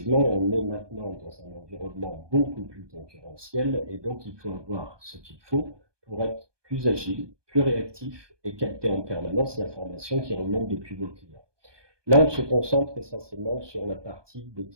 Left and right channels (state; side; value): late; left; 1.2 ms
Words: on est maintenant dans un environnement beaucoup plus concurrentiel et donc il faut avoir ce qu'il faut pour être plus agile, plus réactif et capter en permanence l'information qui remonte depuis vos clients. Là, on se concentre essentiellement sur la partie des